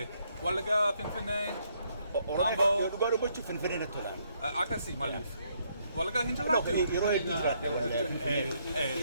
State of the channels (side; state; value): both; inverted; correlation -0.72